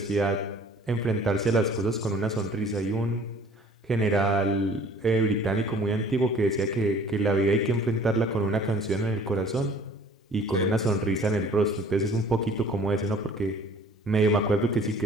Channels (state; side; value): normal; both; correlation 0.51